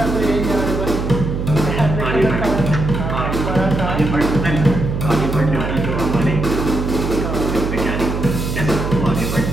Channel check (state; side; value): noise; right; hum, 3 dB below the sound